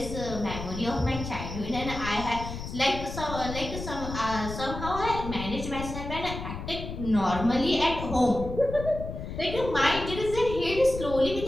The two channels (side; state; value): left; noise; rumble, 8 dB below the sound